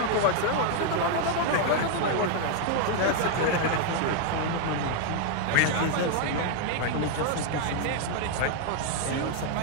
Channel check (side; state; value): both; different; correlation 0.00